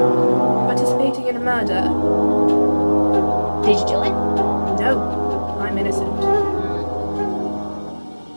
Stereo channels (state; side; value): inverted; both; correlation -1.00